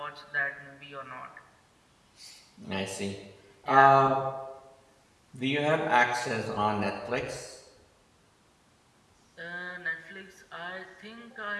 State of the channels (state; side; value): identical; both; correlation 1.00